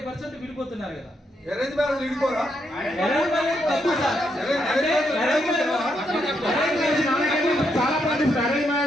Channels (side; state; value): both; normal; correlation 0.79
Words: విడిపోతున్నారు కదా. అరేంజ్ మ్యారేజ్ విడిపోరా? చాలా మంది అరేంజ్